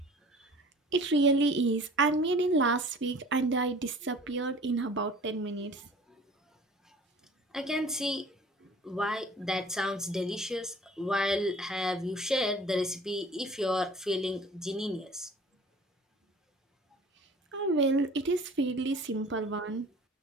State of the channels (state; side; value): normal; both; correlation 0.46